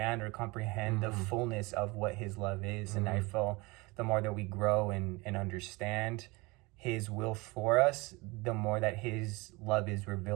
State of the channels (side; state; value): left; quieter; 24.6 dB